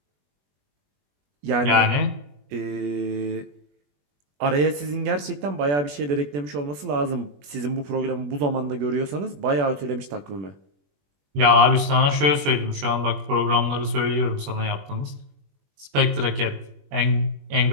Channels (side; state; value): left; late; 21 ms